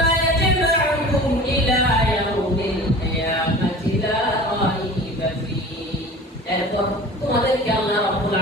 ইয়াজমাউকুম ইলা ইয়াউমিল কিয়ামাতি লা রাইবা ফীহি, এরপর তোমাদেরকে আল্লাহ রাব্বুল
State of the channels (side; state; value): both; normal; correlation 0.40